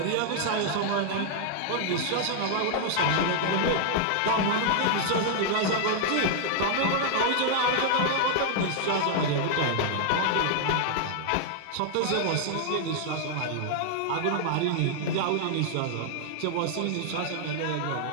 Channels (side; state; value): both; different; correlation -0.01